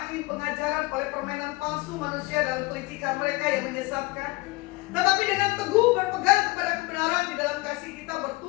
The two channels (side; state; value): right; quieter; 22.3 dB